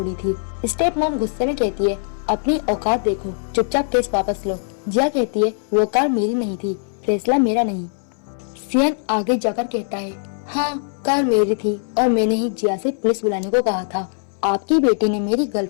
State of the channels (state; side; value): silent; right; 63 dB below the other